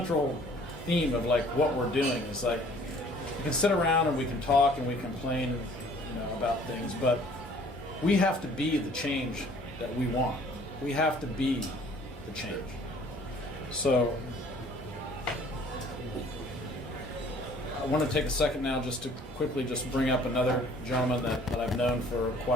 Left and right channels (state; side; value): normal; both; correlation 0.55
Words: theme of like what we're doing. Is like we can sit around and we can talk and we complain, about things, but we have to be the change that we want. We have to be the change. So I want to take a second now just to quickly just bring up another gentleman that I've known for